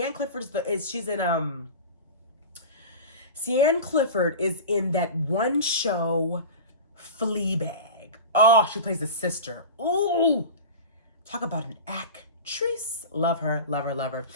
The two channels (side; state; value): both; inverted; correlation -0.30